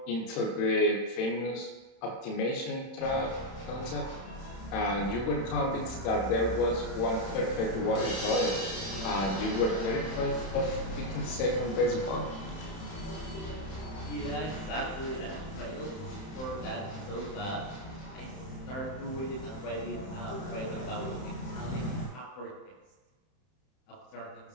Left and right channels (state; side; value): late; right; 31 ms